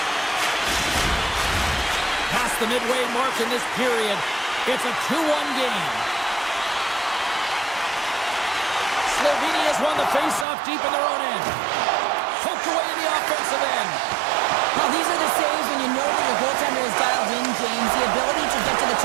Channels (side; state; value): left; drops out; at 10.5 s